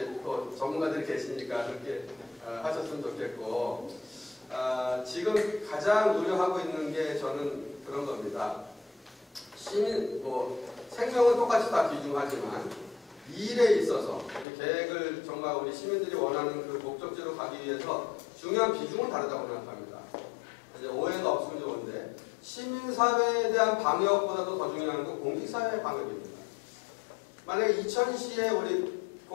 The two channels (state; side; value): drops out; right; at 14.5 s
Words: 또 전문가들이 계시니까 그렇게 하셨으면 좋겠고, 지금 가장 우려하고 있는 게 저는 그런 겁니다. 시민, 뭐 생명은 똑같이 다 귀중하지만 이 일에 있어서 계획을 정말 우리 시민들이 원하는 그 목적지로 가기 위해서 중요한 비중은 다르다고 생각합니다. 이제 오해가 없으면 좋은데 시민사회에 대한 방역보다도 더 중요한 건 공직사회의 방역입니다. 만약에 이천시에 우리